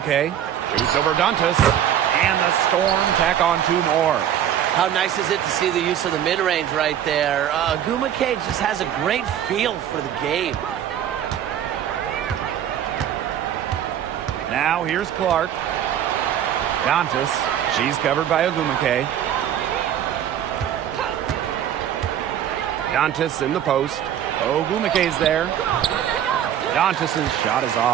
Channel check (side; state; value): left; quieter; 10.2 dB